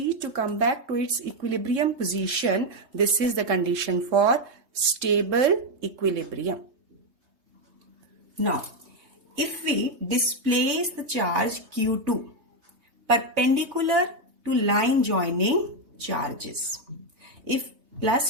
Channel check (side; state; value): left; late; 3.2 ms